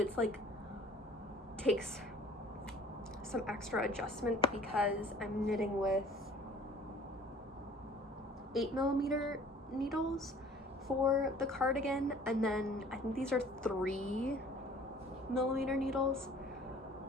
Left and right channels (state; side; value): normal; both; correlation 0.50